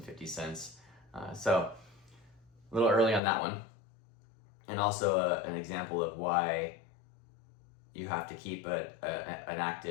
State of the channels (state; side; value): drops out; right; at 3.2 s